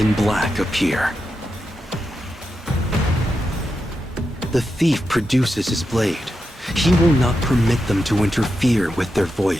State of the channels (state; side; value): normal; both; correlation 0.87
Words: black appear. The thief produces his blade. He will not permit them to interfere with their